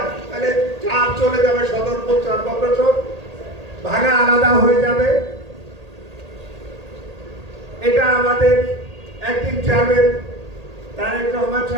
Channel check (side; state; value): left; late; 1.8 ms